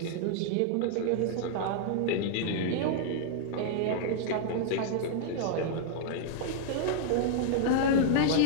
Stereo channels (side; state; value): both; different; correlation -0.01